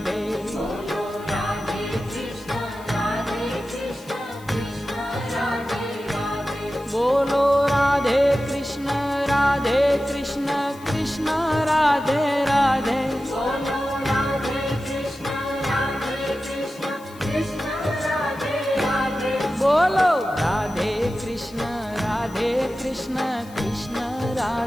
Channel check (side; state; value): left; noise; hiss, 23 dB below the sound